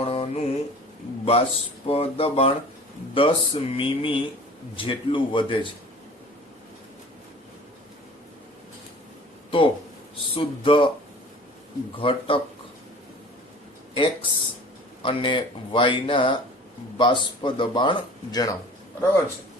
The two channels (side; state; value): both; normal; correlation 0.44